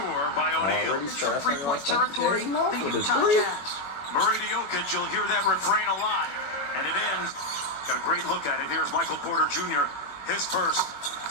by O'Neal. From three-point territory, the Utah Jazz. Murray to Jokic, you'll hear that refrain a lot. And it ends. Got a great look at it. Here's Michael Porter Jr., his first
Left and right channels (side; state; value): right; late; 21 ms